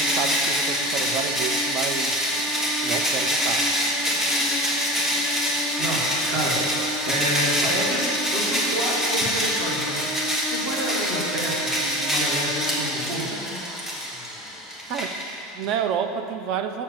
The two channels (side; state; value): both; normal; correlation 0.32